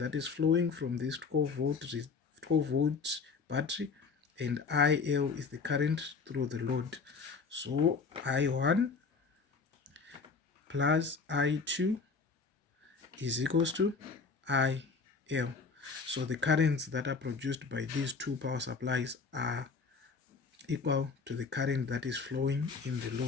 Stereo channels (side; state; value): right; quieter; 4.8 dB